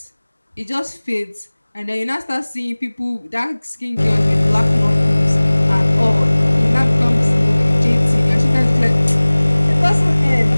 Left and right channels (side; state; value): both; inverted; correlation -1.00